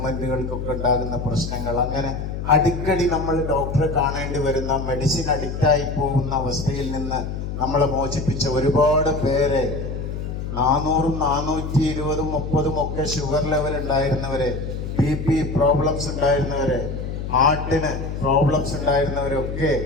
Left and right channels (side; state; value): left; noise; hum, 5 dB below the sound